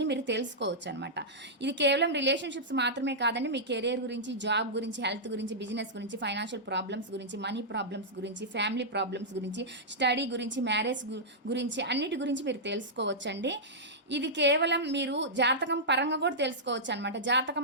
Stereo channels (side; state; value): both; normal; correlation -0.10